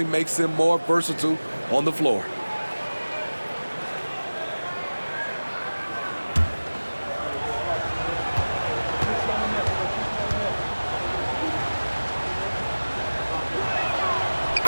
makes him more versatile on the floor.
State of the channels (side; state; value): both; inverted; correlation -1.00